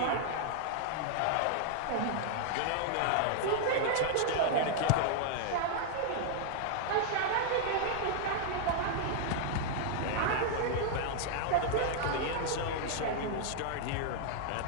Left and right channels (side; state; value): both; different; correlation 0.00